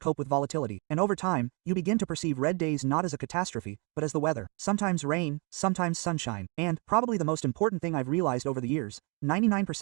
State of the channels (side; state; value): left; quieter; 32.8 dB